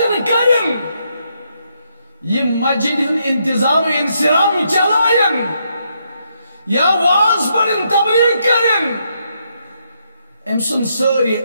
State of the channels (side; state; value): both; inverted; correlation -0.77